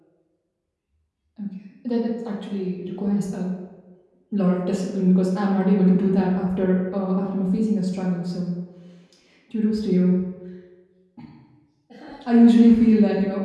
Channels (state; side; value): identical; both; correlation 1.00